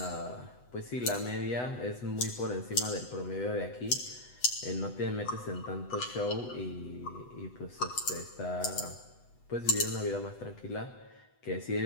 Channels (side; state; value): right; late; 8.1 ms